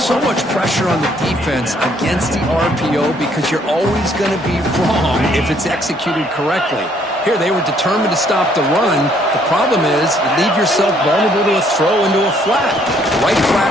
much pressure on the defense against the RPO because you're always going to be wrong if it's executed correctly. Here, they were determined to stop the run. The problem is you leave yourself vulnerable to a throw into a flat. The right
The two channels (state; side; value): normal; both; correlation 0.65